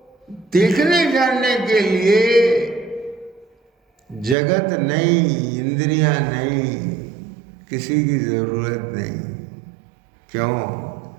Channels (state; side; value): drops out; left; at 4.4 s